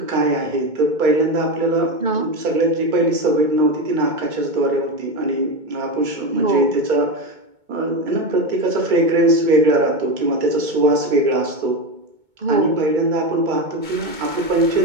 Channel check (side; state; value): left; late; 2.2 ms